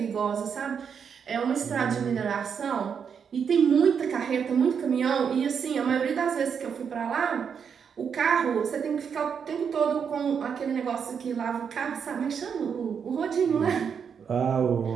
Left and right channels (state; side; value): quieter; left; 6.9 dB